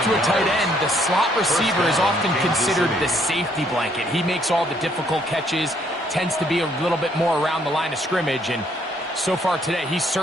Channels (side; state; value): both; normal; correlation 0.68